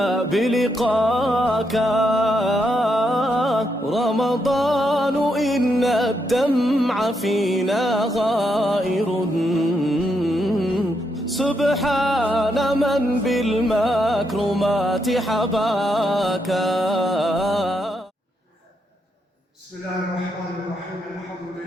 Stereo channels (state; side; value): normal; both; correlation 0.79